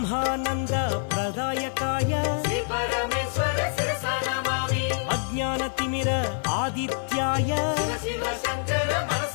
प्रदायकाय श्री परमेश्वर शिरसा नमामि अज्ञानतिमिर आदित्याय शिव शिव शङ्कर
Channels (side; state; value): right; silent; 61 dB below the other